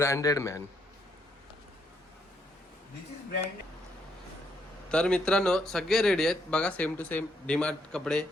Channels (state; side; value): normal; both; correlation 0.74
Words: मॅन. तर मित्रांनो, सगळे रेडी आहेत बघा, सेम टू सेम डीमार्ट कपडे.